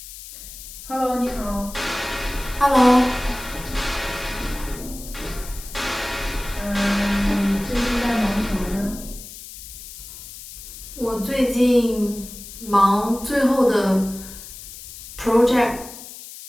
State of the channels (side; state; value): left; noise; hiss, 14 dB below the sound